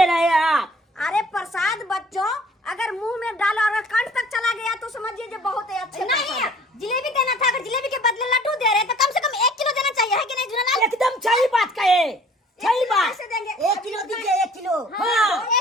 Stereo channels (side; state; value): both; normal; correlation 0.53